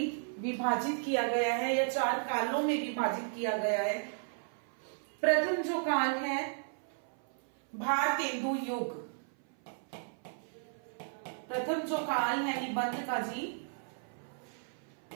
विभाजित किया गया है या 4 कालों में विभाजित किया गया है। प्रथम जो काल है भारतेंदु युग। प्रथम जो काल है निबंध का जी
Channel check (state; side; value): silent; left; 55 dB below the other